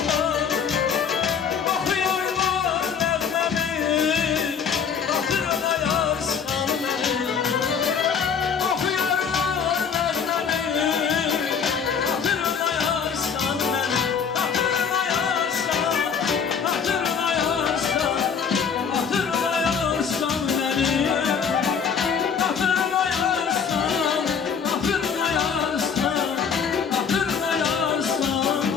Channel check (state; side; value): quieter; right; 6.7 dB